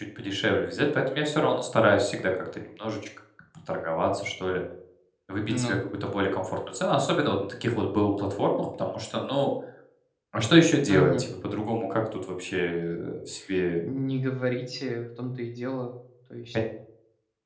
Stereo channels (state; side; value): identical; both; correlation 1.00